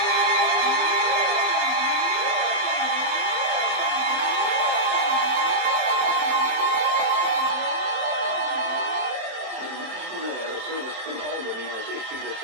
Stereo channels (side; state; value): left; late; 27 ms